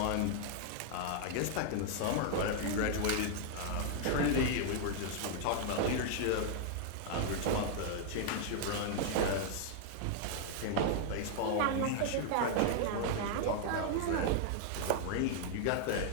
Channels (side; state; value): both; different; correlation 0.00